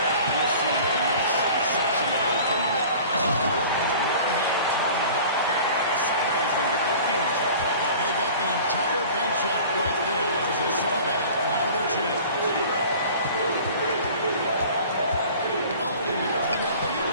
You'll see him make such an open look. Really the one-hand tomahawk guy. Somebody's going to get their feelings hurt. They got the entire bench up right there as they saw that. Out of their chance. Oh, and here's the alley-oop.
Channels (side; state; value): both; inverted; correlation -0.44